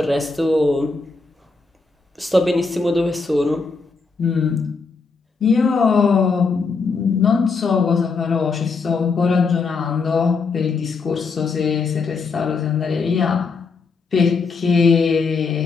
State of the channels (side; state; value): right; quieter; 4.5 dB